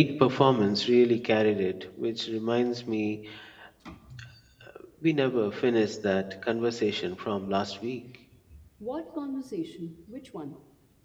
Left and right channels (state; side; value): identical; both; correlation 1.00